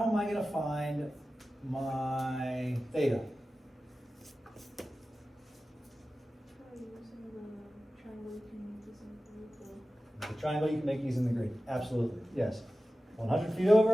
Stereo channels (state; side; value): normal; both; correlation 0.95